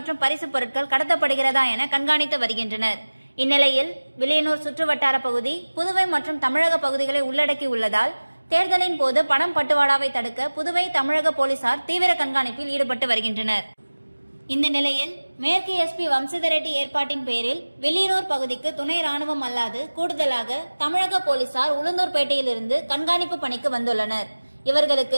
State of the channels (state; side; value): inverted; both; correlation -1.00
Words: பரிசுப் பொருட்கள் கடத்தப்படுகிறதா என கண்காணித்து வருகின்றனர். இந்நிலையில் வில்லியனூர் சுற்றுவட்டார பகுதி புதுவை மற்றும் தமிழக பகுதிகளை உள்ளடக்கி உள்ளதால் தேர்தலின் போது பணம் பட்டுவாடாவை தடுக்க புதுவை தமிழக போலீசார் தீவிர கண்காணிப்பில் ஈடுபட்டு வருகின்றனர். இந்த நிலையில் மேற்கு எஸ்பி வம்சிதர் ரெட்டி ஏற்பாட்டின் பேரில் வில்லியனூர் பகுதிக்கு துணை ராணுவம் அல்லாது கூடுதலாக தமிழக போலீசார் உளுந்தூர்பேட்டையிலிருந்து கண்காணிப்பு பணிக்கு வந்துள்ளனர்.